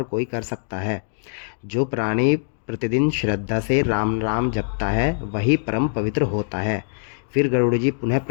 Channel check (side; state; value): right; silent; digital silence